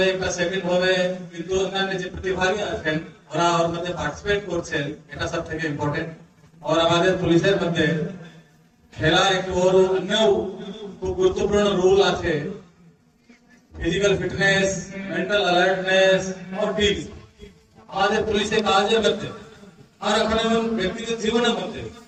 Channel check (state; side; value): identical; both; correlation 1.00